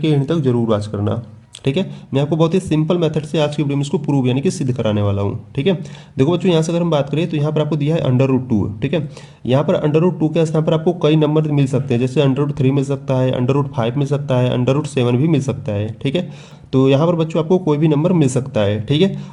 एंड तक जरूर वॉच करना। ठीक है, मैं आपको बहुत ही सिंपल मेथड से आज की वीडियो में इसको प्रूव यानी कि सिद्ध कराने वाला हूँ। ठीक है, देखो बच्चों, यहाँ से अगर हम बात करें तो यहाँ पर आपको दिया है √2। ठीक है, यहाँ पर √2 के स्थान पर आपको कई नंबर मिल सकते हैं, जैसे √3 मिल सकता है, √5 मिल सकता है, √7 भी मिल सकता है। ठीक है, तो यहाँ पर बच्चों आपको कोई भी नंबर मिल सकता है। ठीक है,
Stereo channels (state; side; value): identical; both; correlation 1.00